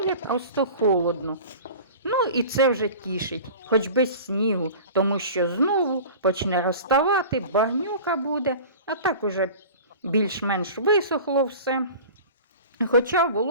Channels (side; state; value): both; inverted; correlation -0.38